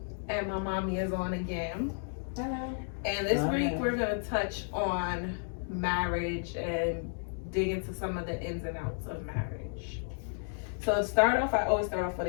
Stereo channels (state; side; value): silent; right; digital silence